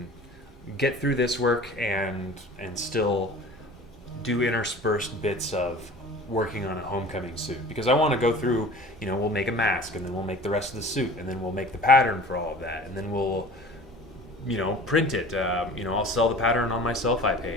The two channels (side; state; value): both; normal; correlation 0.42